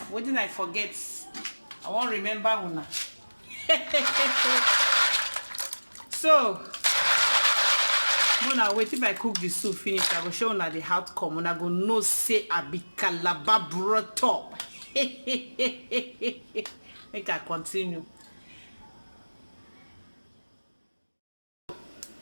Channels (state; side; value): inverted; both; correlation -1.00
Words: forget. I won't remember una. So, when I wait, if I cook the soup finish, I will show una the outcome. Una go know say I be Calabar brought up. Make I continue.